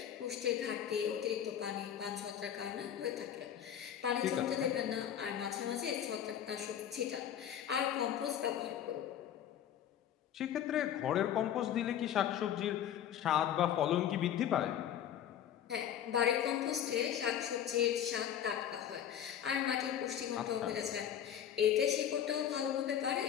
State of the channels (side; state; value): right; quieter; 9.9 dB